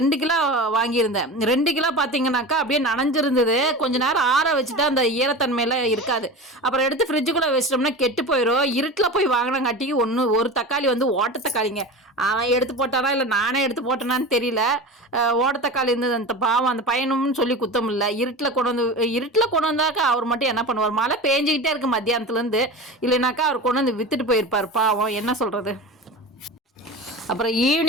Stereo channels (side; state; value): both; normal; correlation 0.30